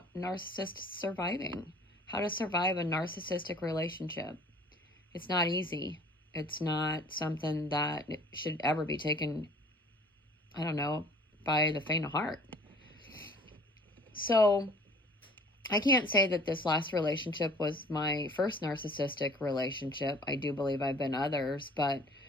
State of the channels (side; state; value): both; normal; correlation 0.51